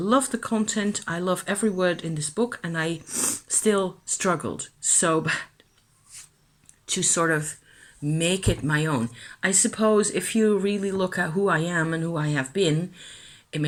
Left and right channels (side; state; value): both; identical; correlation 1.00